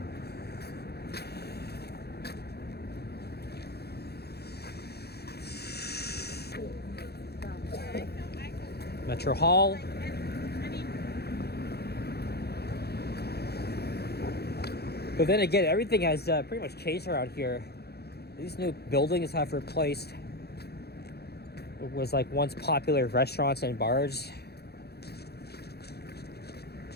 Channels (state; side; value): late; right; 0.47 ms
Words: Metro Hall. But then again, everything has pretty much changed around here. These new buildings have replaced what was like once popular restaurants and bars.